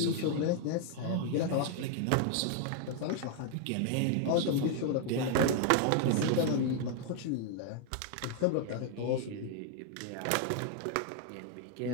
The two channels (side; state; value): both; different; correlation 0.00